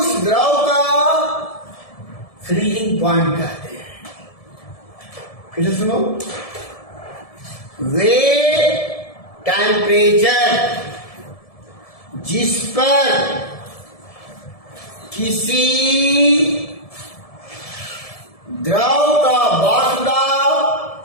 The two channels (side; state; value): right; late; 1.7 ms